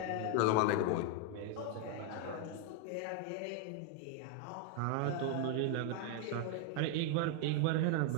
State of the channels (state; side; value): different; both; correlation 0.01